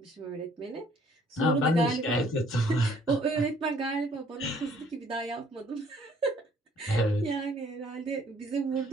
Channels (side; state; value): both; normal; correlation 0.60